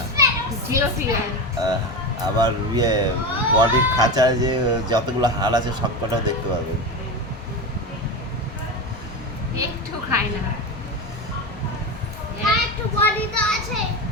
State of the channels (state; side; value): normal; both; correlation 0.20